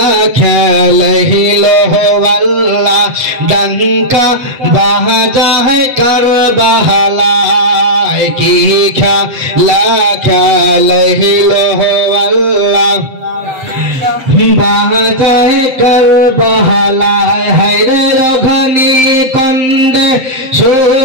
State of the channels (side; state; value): left; late; 7.7 ms